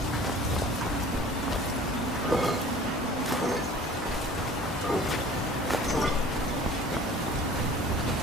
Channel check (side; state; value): both; normal; correlation 0.46